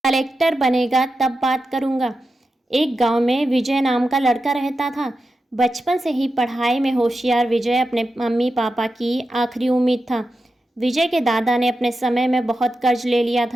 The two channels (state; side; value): normal; both; correlation 0.90